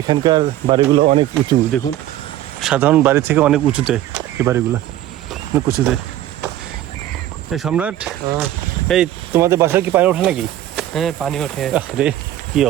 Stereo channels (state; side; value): quieter; left; 13.3 dB